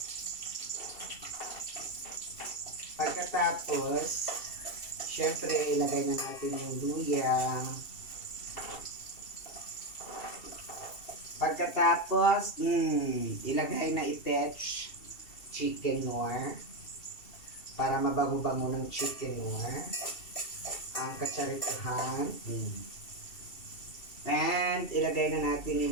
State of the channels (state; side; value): late; right; 2.7 ms